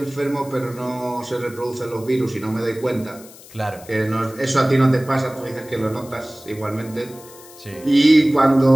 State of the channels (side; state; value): left; noise; hiss, 20 dB below the sound